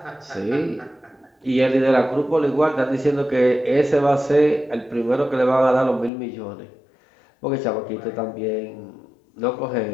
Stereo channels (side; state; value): right; drops out; at 6.1 s